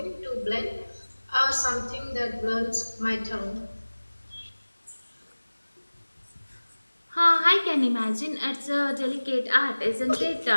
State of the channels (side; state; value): both; inverted; correlation -1.00